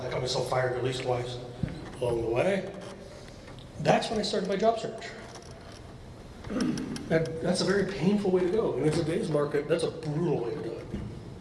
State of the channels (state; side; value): identical; both; correlation 1.00